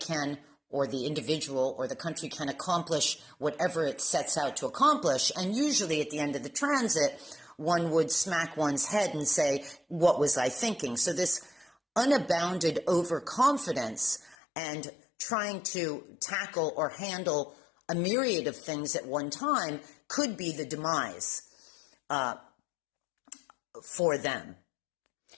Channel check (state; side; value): drops out; right; at 14.4 s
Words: or the individual or the country can accomplish whatever it sets out to accomplish. And usually at the end of the transit, one would smack one's head and say, what was I thinking? So this unabounded overconfidence and trying to tackle or handle a myriad of things at one time could be the demise for them.